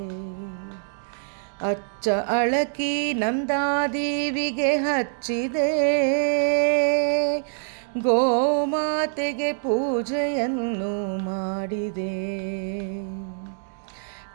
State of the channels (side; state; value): left; silent; digital silence